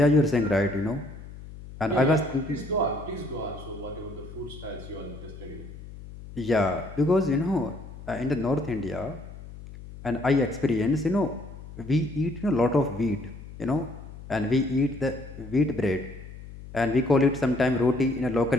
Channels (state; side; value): noise; left; hum, 14 dB below the sound